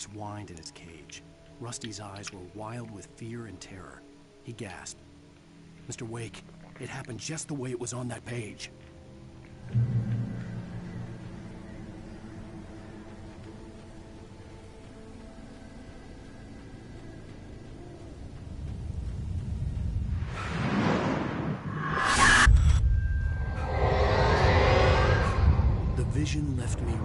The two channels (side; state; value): both; identical; correlation 1.00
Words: whined in his cage. Rusty's eyes were wild with fear and terror. He gasped. "Mr. Wake, It happened just the way it was on that page. The vision left me